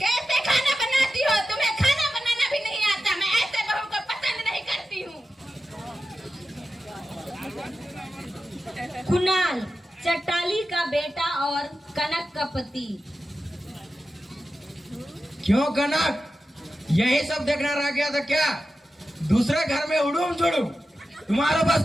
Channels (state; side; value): normal; both; correlation 0.92